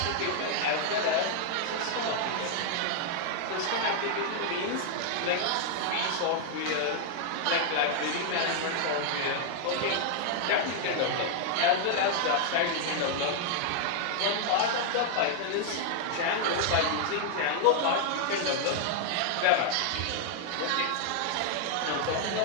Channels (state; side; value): different; both; correlation 0.00